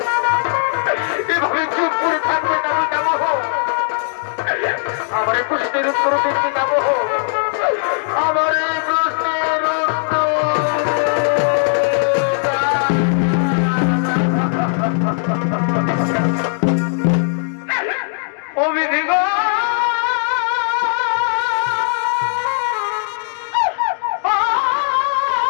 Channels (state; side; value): silent; right; digital silence